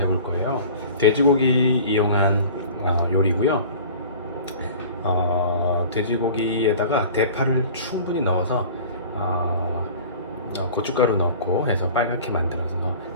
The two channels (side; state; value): both; inverted; correlation -0.42